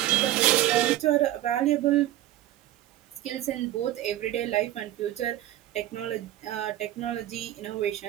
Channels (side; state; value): left; quieter; 14.1 dB